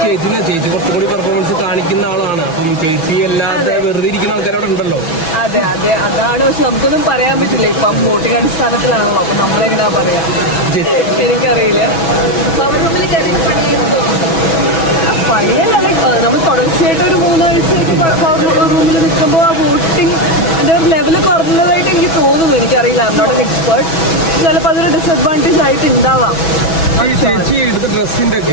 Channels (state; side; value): late; right; 6.1 ms